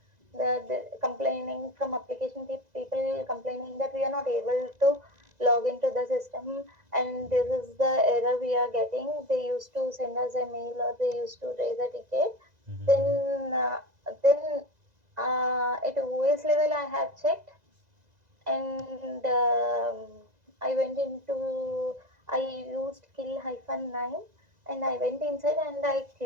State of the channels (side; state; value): left; late; 2.0 ms